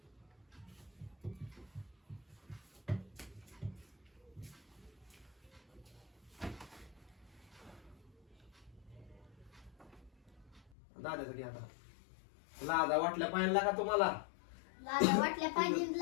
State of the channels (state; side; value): drops out; right; at 10.7 s